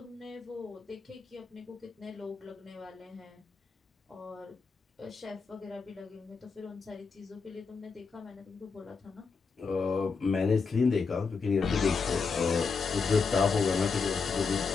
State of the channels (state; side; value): quieter; right; 5.0 dB